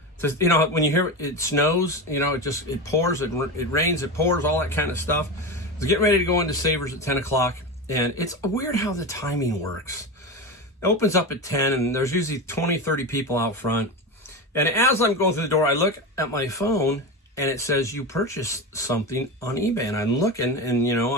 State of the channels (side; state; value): both; normal; correlation 0.21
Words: when you hear it snows, it pours, it rains, it pours, all that kind of stuff. I was getting ready to go into Savers at 10 o'clock, and it's weird how the timing works. It opens up at 10, and there's usually 20, 30 people out front. And as I'm going through the door, I look at my phone, and it says, you purchased something on eBay. And I'm looking, and,